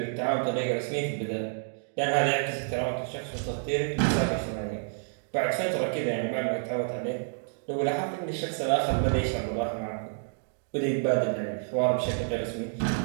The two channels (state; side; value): silent; left; digital silence